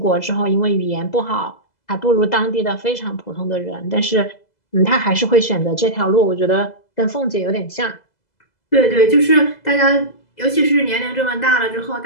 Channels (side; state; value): right; late; 2.0 ms